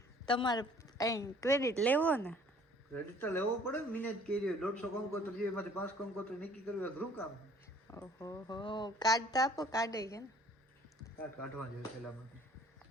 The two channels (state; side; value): normal; both; correlation 0.54